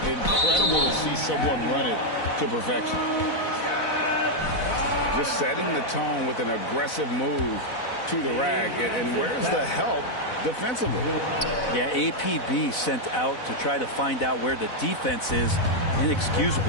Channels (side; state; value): right; late; 4.0 ms